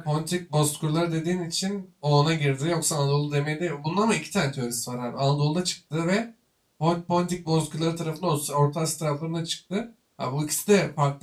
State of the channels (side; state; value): both; identical; correlation 1.00